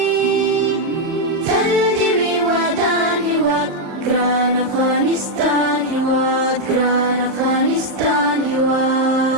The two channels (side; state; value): left; late; 39 ms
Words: تل دې وي ودان هېواد ګران افغانستان هېواد ګران افغانستان